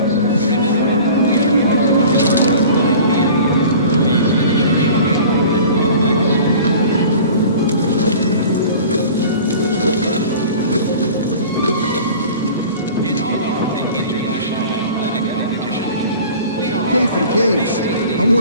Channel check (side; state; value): both; inverted; correlation -0.42